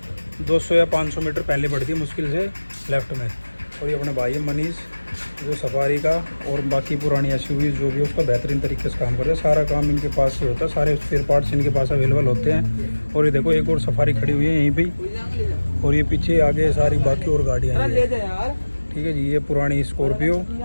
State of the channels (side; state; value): both; inverted; correlation -1.00